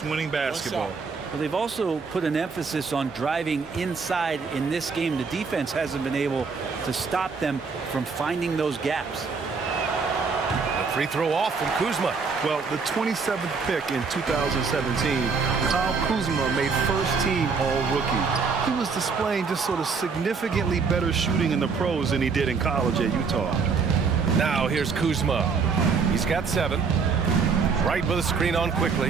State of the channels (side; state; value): left; quieter; 5.2 dB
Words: winning basketball. Well, they've also put an emphasis on driving inside in this game. The defense hasn't been able to stop them from finding those gaps. A free throw off from Kuzma. Well, the 27th pick in 2017, Kyle Kuzma made first team All-Rookie. He was displaying just sort of significantly better shooting in the pros than he did in college at Utah. Now here's Kuzma. He's got 7. Right with a screen on